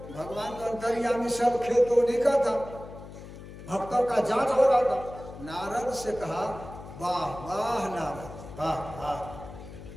भगवान का अंतर्यामी सब खेतों निका था, भक्तों का जांच हो रहा था। नारद से कहा वाह वाह नारद वाह वाह,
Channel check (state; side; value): noise; left; hum, 14 dB below the sound